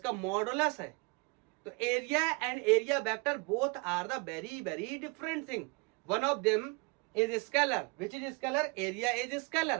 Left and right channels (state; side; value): quieter; left; 30.4 dB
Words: मॉडुलस है। तो area and area vector both are the very very different thing. One of them is scalar, which is scalar? Area is